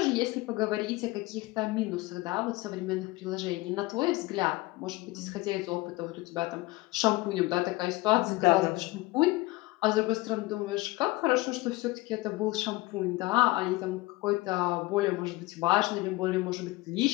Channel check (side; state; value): right; quieter; 20.8 dB